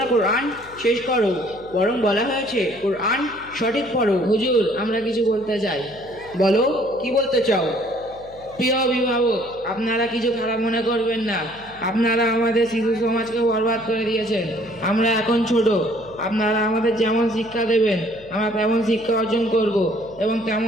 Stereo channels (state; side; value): noise; left; hum, 23 dB below the sound